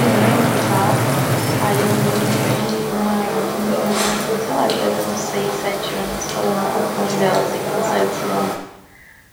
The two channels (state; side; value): identical; both; correlation 1.00